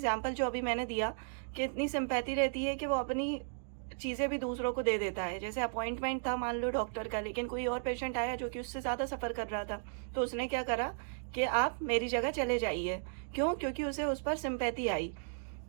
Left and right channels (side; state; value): left; silent; digital silence